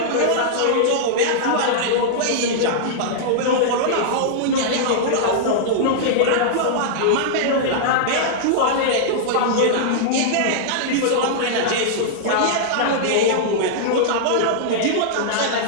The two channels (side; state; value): both; different; correlation -0.02